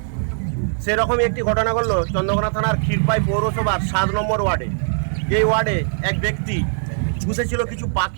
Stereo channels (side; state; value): left; silent; digital silence